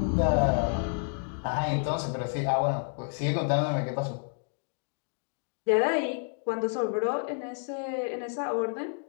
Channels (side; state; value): right; silent; digital silence